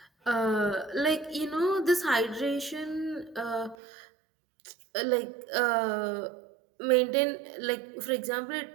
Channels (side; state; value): left; drops out; at 3.8 s